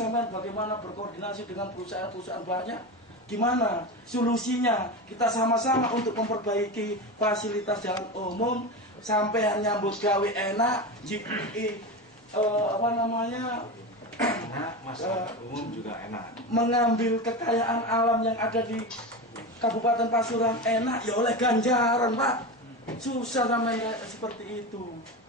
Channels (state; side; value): normal; both; correlation 0.22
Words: bagaimana berkoordinasi dengan perusahaan-perusahaan banyak. Gimana solusinya? Kita sama-sama untuk memperbaiki fasilitas jalan umum, sampai nyambut gawe enak, masyarakat umum juga enak. Mengambil kekayaan alam yang ada di Kabupaten Pasuruan enak ya oleh ganjaran, Pak. Susah sampai seperti itu.